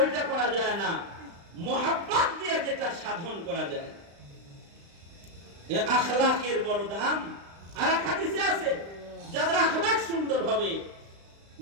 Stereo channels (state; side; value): late; left; 35 ms